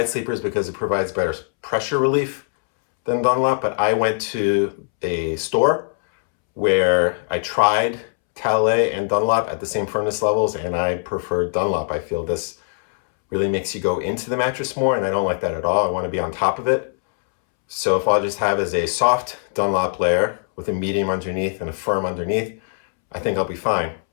sleepers because it provides better pressure relief than Dunlop, but I went to a store where I tried Talalay and Dunlop at the same firmness levels, and I preferred Dunlop. I feel this really makes you go into the mattress more, and I don't like that at all. I want to be on top of it. So if all I just have is a soft Dunlop layer with a medium underneath and a firm underneath, I think I'll be fine.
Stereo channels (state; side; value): silent; right; 65 dB below the other